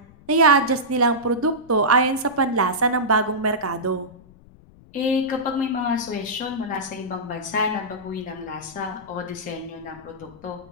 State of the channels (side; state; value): left; noise; rumble, 24 dB below the sound